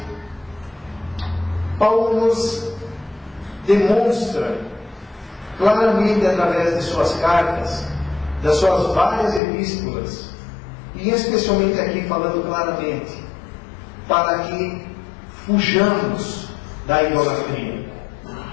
Paulo nos demonstra claramente através de suas cartas, das suas várias epístolas, e especialmente aqui falando claramente, para que fujamos da idolatria.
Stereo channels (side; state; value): right; drops out; at 9.4 s